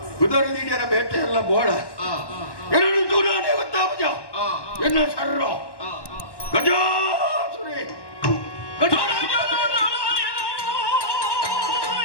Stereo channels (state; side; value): late; right; 1.1 ms